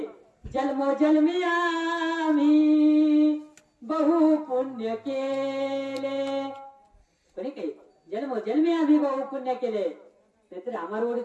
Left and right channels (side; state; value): both; identical; correlation 1.00